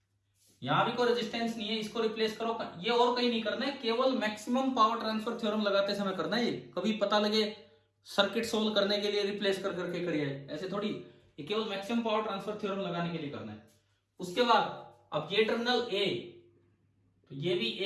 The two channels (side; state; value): both; identical; correlation 1.00